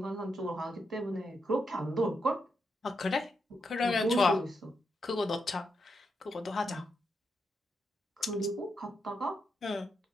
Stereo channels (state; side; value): normal; both; correlation 0.83